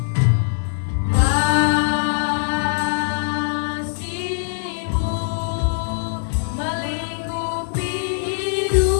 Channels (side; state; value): right; silent; digital silence